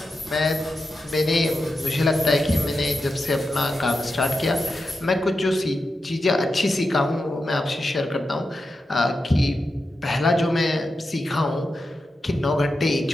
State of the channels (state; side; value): normal; both; correlation 0.89